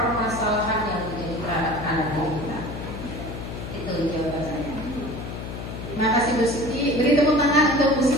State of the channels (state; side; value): noise; left; hum, 8 dB below the sound